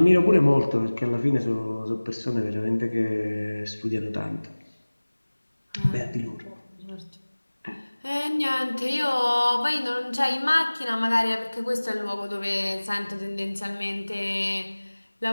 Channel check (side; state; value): both; inverted; correlation -1.00